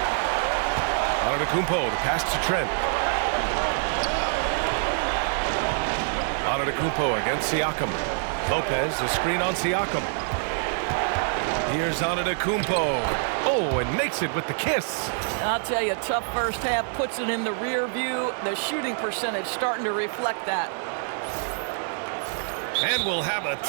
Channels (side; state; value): left; silent; 61 dB below the other